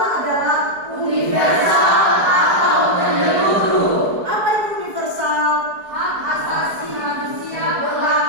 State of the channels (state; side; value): late; left; 4.6 ms